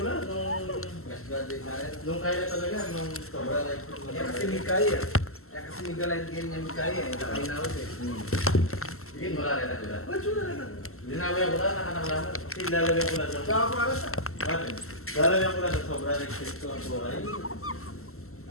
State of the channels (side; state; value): right; late; 0.63 ms